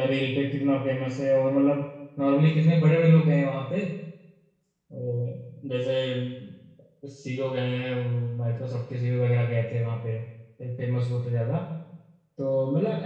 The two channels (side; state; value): both; identical; correlation 1.00